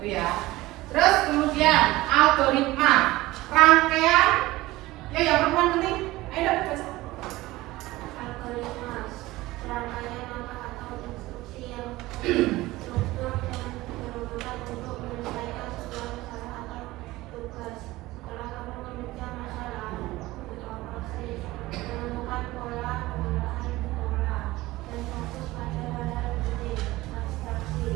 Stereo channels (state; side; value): quieter; left; 18.5 dB